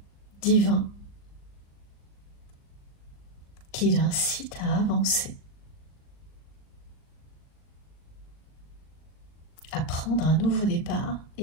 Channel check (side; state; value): right; late; 38 ms